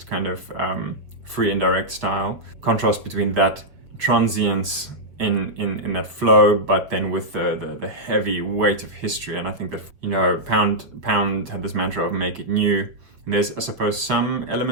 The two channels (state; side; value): late; left; 6.2 ms